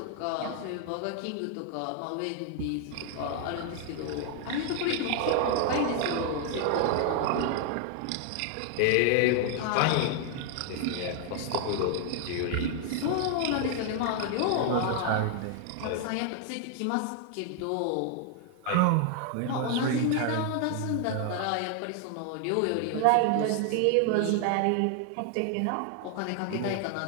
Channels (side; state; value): both; different; correlation 0.00